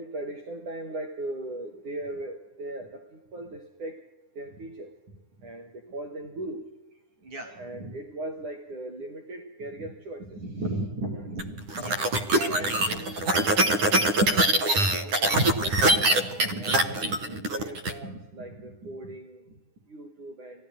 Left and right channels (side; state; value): left; late; 9.9 ms